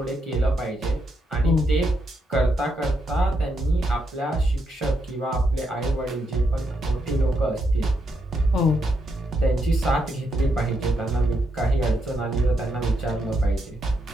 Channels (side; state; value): both; normal; correlation 0.80